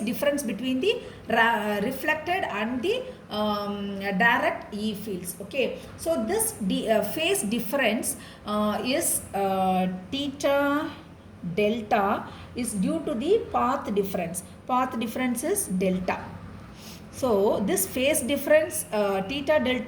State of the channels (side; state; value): both; identical; correlation 1.00